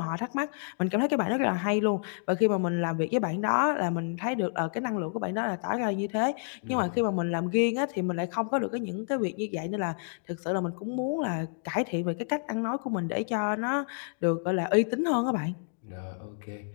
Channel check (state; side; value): silent; right; digital silence